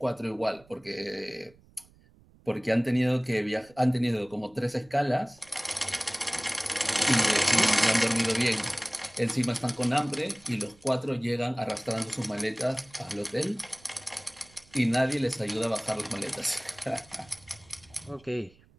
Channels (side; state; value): right; noise; rumble, 28 dB below the sound